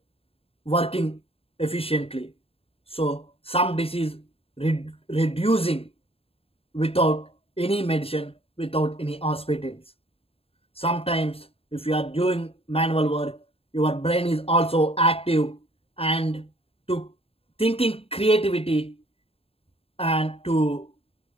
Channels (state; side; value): late; right; 0.28 ms